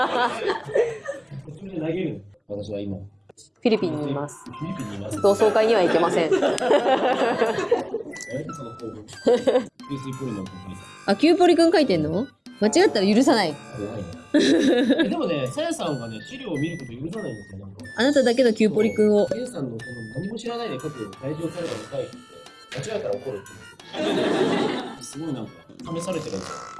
私は今フィリピンにいます。フィリピンにいます。同窓会には行けません。あ、キューポリくん書いてんの？間違ったら許さない。でもね、さやさんがね、資料を見ること許さないんですよ。なんかあなただけのキューポリくんを。さやさんのその何も知らないで書く退場された見たいって間違えたら怒るって。すごいなんか試されてるんです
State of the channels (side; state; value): both; identical; correlation 1.00